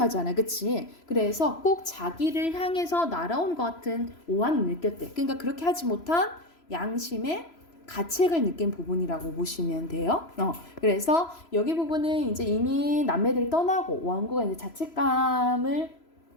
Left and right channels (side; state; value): right; late; 3.0 ms